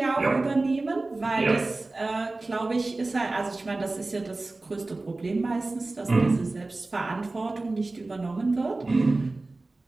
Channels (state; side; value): quieter; left; 3.2 dB